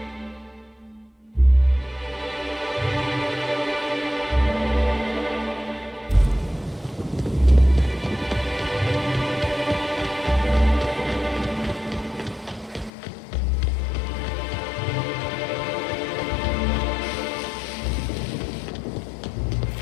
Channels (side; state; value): right; drops out; at 12.9 s